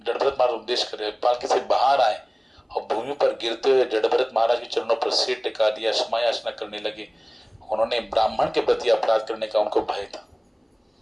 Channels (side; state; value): both; identical; correlation 1.00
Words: जड़भरत महाराज उपदेश कर रहे, पालकी से बाहर आए और भूमि पर गिरते हुए जड़भरत महाराज के चरणों पर सिर टिका दिया, क्षमायाचना करने लगे। उन्होंने ब्राह्मण के प्रति अपराध करने का उनको भय था।